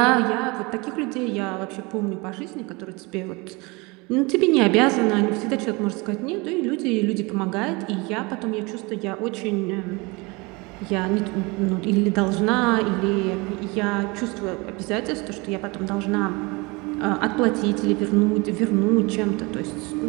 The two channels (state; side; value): quieter; left; 26.1 dB